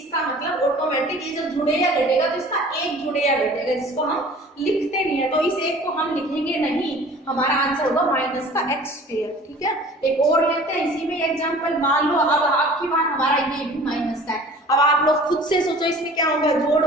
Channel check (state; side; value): normal; both; correlation 0.46